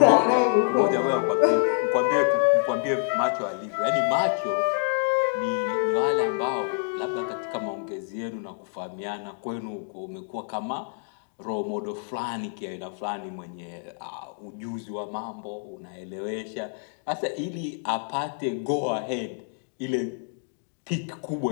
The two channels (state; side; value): silent; right; digital silence